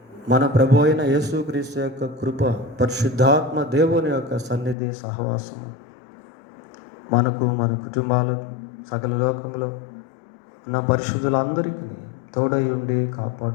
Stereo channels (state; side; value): drops out; right; at 4.8 s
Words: మన ప్రభు అయిన యేసుక్రీస్తు యొక్క కృప, పరిశుద్ధాత్మ దేవుని యొక్క సన్నిధి సహవాసము మనకు, మన కుటుంబాలకు, సకల లోకంలో ఉన్న పరిశుద్ధులందరికీ తోడై ఉండి